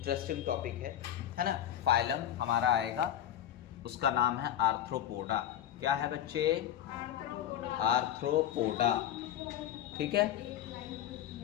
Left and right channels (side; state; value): right; quieter; 11.0 dB